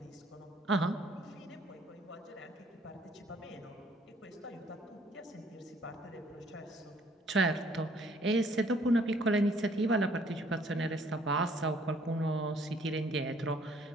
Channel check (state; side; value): normal; both; correlation 0.62